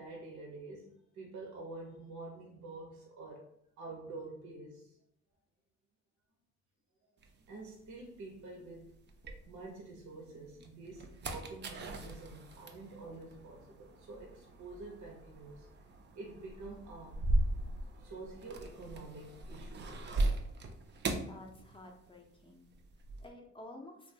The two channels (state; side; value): normal; both; correlation 0.73